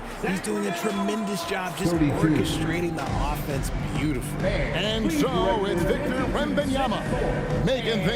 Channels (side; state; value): both; identical; correlation 1.00